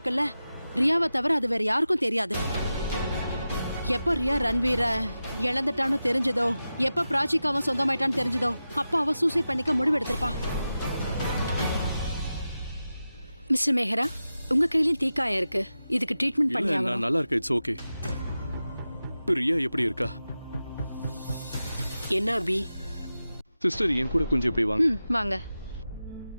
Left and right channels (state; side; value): inverted; both; correlation -0.93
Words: ரியாவை தவிர அது வேற யாருக்கும் தெரியாது. எப்ப ரியா ரன்வீர இழந்துட்டான்னு தெரிஞ்சதோ, எப்ப பிராச்சிக்கு அவன் சொந்தமாயிட்டான்னு தெரிஞ்சதோ, அப்ப அவ சூசைட் பண்ணிக்க முடிவு எடுத்திருப்பா. மிஸ்டர் மேஹரா, உங்க கையிலயும் தீக்காயம் இருக்கு. இதுக்கு ட்ரீட்மெண்ட் பண்ணி ஆகணும். நான் நல்லா இருக்கேன். It's okay. ரியா எப்படி இருக்கா? என்ன அபி? சிஸ்டர் என் கூட கொஞ்சம் இப்படி வாங்க. வாங்க.